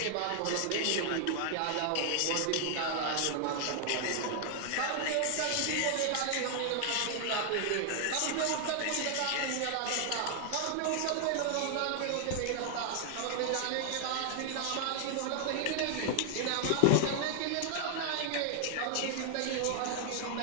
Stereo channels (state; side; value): different; both; correlation 0.00